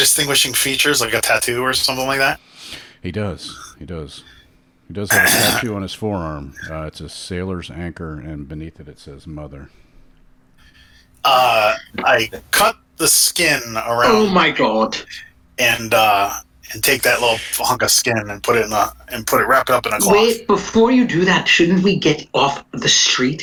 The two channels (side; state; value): both; identical; correlation 1.00